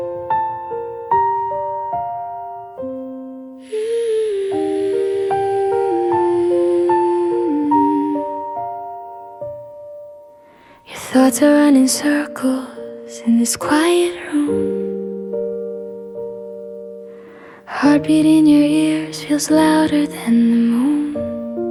Your thoughts are running circles in this quiet room. Heartbeat in your ears feels louder than the moon.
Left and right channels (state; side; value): identical; both; correlation 1.00